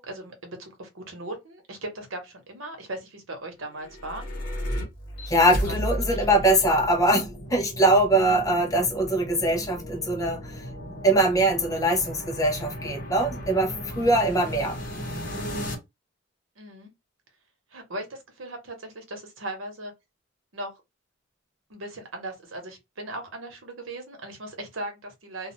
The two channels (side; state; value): both; normal; correlation 0.25